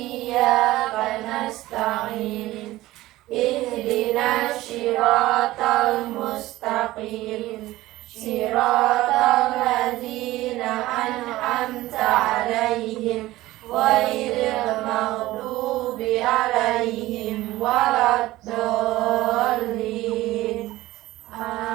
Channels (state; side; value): quieter; left; 17.1 dB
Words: nasta'in. Ihdinas siratal mustaqim. Siratal ladzina an'amta 'alaihim ghairil maghdubi 'alaihim waladdallin.